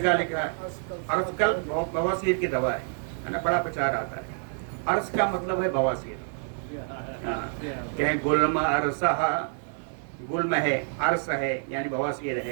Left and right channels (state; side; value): silent; left; 57 dB below the other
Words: लिखा है अर्शकल्प बवासीर की दवा है ना, बड़ा प्रचार आता है। अर्श का मतलब है बवासीर। कहें गुल्म अर्शः, गुल्म है, अर्श है यानी बवासीर